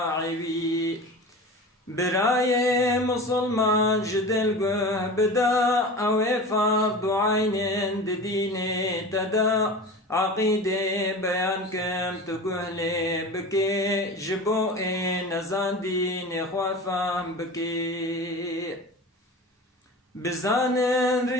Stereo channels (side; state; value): both; normal; correlation 0.33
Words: براي مسلمان جدل قه بدا او فرض عين ديني تدا عقيدة بيان كم تقهلي بكي جبوئي نزان ديني خوافام بكي بزانن